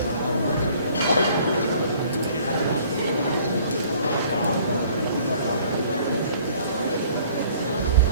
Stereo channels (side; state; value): both; inverted; correlation -0.56